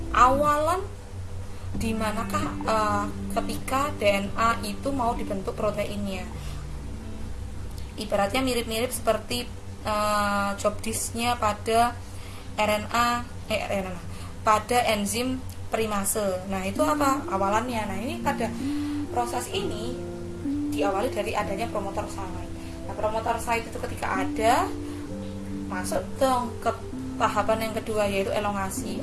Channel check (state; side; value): identical; both; correlation 1.00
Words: awalan di manakah ketika DNA itu mau dibentuk proteinnya. Ibaratnya mirip-mirip seperti job disk-nya pada pada enzim primase. Nah, itu apa? Awalannya. Nah, ini pada proses ini diawali dari adanya promotor site. Nah, promotor site itu ketika ada, masuk dong ke tahapan yang kedua, yaitu elongasi.